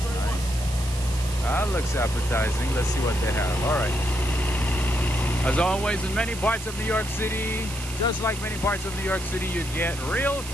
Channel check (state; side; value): noise; right; hiss, 11 dB below the sound